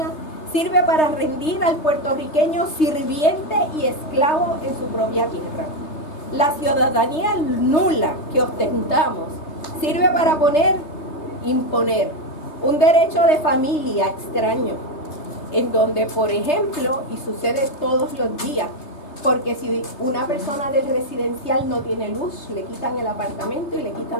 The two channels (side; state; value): right; late; 3.3 ms